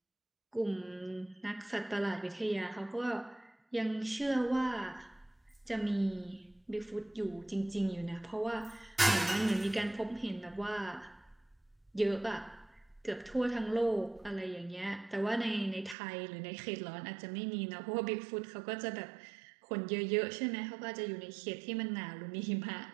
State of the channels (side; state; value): left; drops out; at 16.0 s